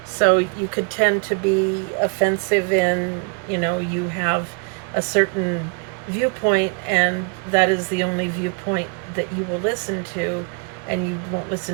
So you could tend to be offensive in, you have a certain viewpoint, and that is the only viewpoint that you will listen to, and you won't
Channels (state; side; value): quieter; left; 35.7 dB